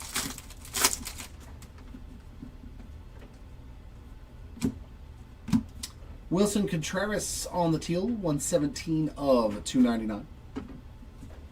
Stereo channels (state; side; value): identical; both; correlation 1.00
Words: Wilson Contreras on the teal, 117 of 299.